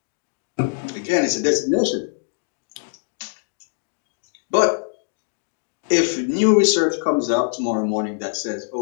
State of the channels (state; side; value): silent; right; digital silence